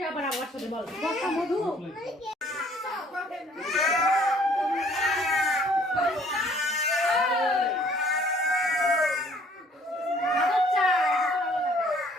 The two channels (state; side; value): normal; both; correlation 0.58